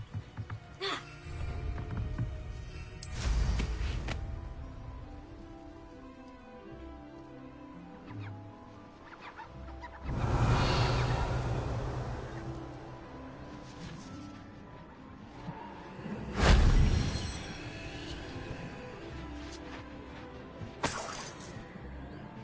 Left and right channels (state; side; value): identical; both; correlation 1.00